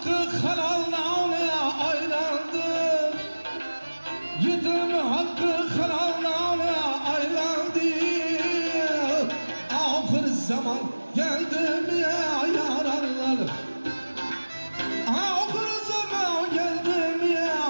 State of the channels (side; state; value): both; inverted; correlation -1.00